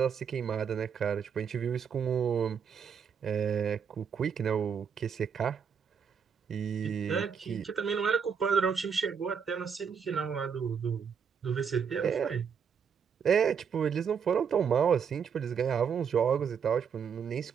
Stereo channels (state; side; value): quieter; left; 6.9 dB